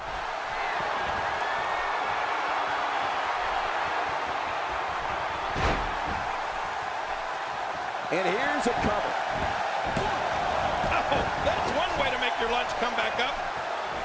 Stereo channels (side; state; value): both; identical; correlation 1.00